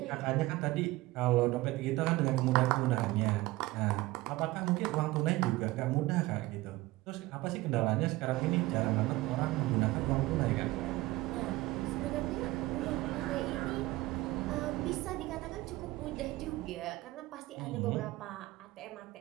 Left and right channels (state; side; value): quieter; left; 19.1 dB